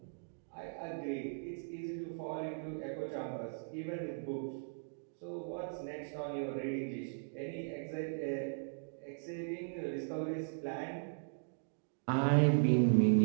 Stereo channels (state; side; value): silent; left; digital silence